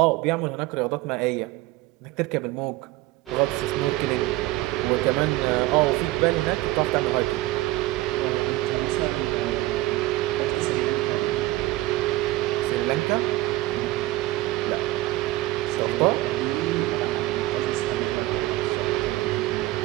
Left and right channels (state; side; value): quieter; left; 17.6 dB